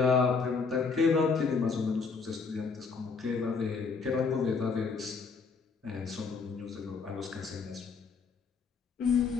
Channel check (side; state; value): right; quieter; 5.0 dB